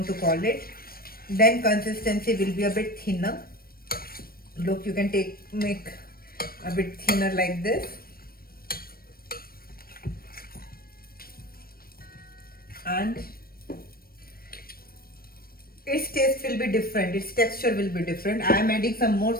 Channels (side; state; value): right; late; 0.43 ms